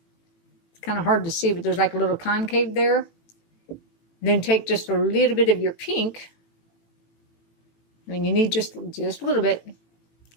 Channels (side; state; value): right; late; 18 ms